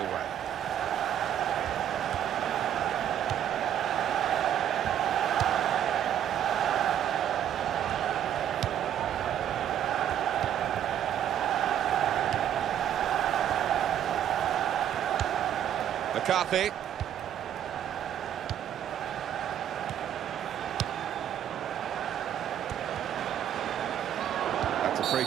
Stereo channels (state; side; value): quieter; left; 10.3 dB